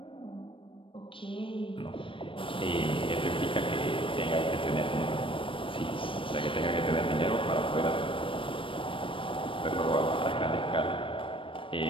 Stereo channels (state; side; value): late; right; 0.25 ms